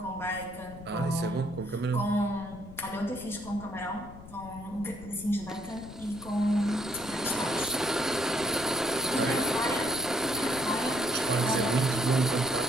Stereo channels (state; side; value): noise; left; rumble, 16 dB below the sound